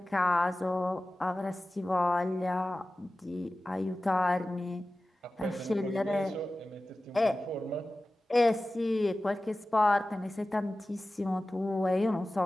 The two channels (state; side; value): normal; both; correlation 0.96